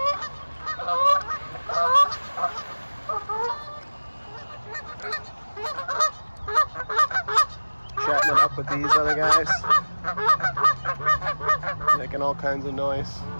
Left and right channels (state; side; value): inverted; both; correlation -1.00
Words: Chatting it up with these other guys, making all kinds of noise.